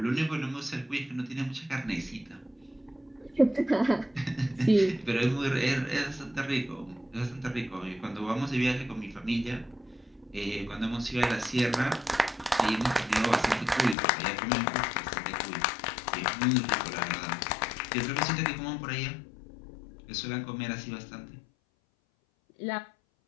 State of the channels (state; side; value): drops out; right; at 14.0 s